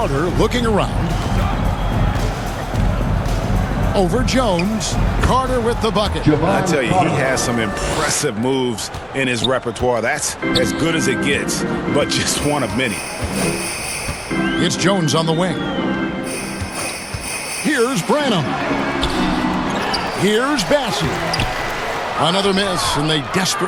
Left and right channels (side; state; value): both; identical; correlation 1.00